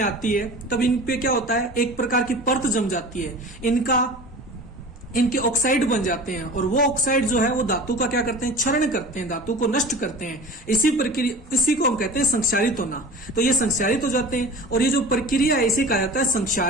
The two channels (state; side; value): normal; both; correlation 0.37